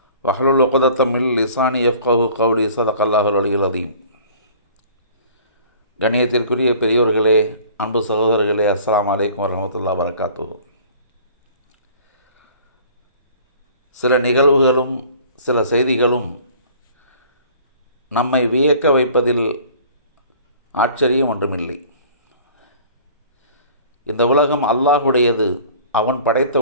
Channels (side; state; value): both; inverted; correlation -0.49